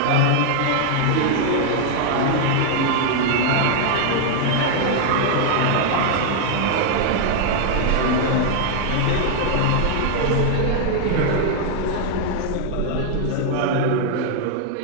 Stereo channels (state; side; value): different; both; correlation 0.00